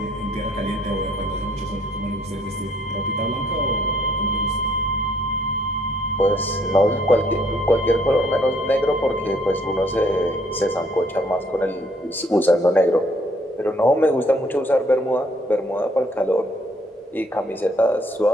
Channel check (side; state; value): both; normal; correlation 0.65